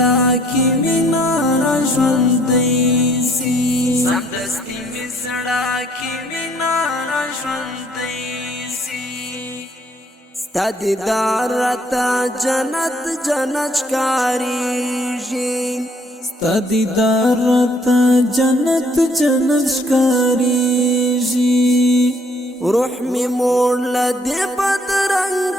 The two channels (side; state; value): both; normal; correlation 0.64